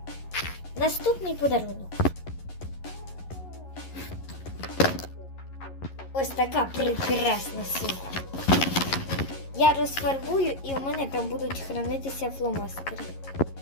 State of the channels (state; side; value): late; right; 11 ms